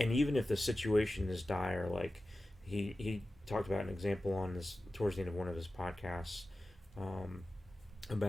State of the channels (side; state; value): both; normal; correlation 0.95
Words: even if the situation is dire, like he talked about an example on this towards the end of one of his podcasts,